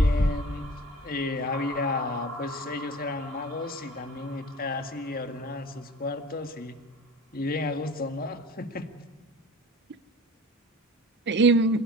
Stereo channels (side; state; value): both; normal; correlation 0.40